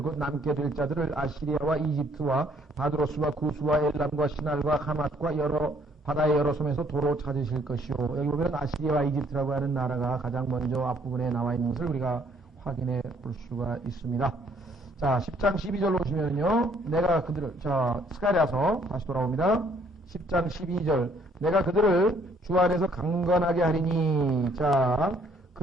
곧 남게 될 자들을 아시리아와 이집트와 바드로스와 구스와 엘람과 시날과 하맛과 여러 바다의 여러 섬에서 도로 찾으실 것이요. 여기 보면 아시리아와 이집트라고 하는 나라가 가장 먼저 앞부분에 나와 있는 것을 우리가 확인해 볼 수가 있습니다. 자, 10장 12절로 보시면요. 내가 그들을, 스가랴서 다시 돌아옵니다. 10장 12절. 내가 그들을 주 안에서 강건하게 하리니, 자,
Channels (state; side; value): normal; both; correlation 0.64